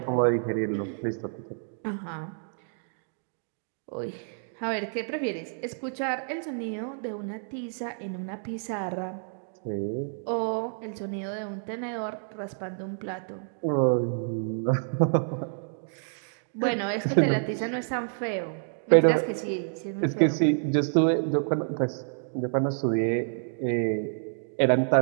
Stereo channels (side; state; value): left; silent; digital silence